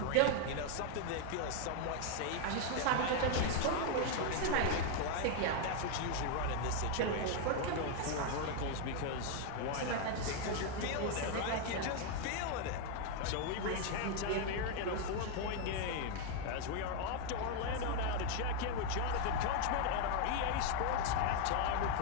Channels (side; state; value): both; different; correlation 0.01